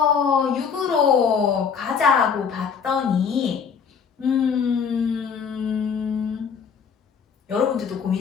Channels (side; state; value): right; quieter; 6.5 dB